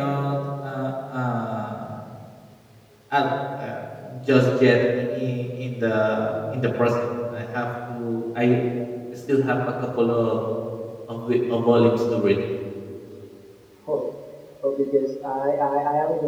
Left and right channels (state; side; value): identical; both; correlation 1.00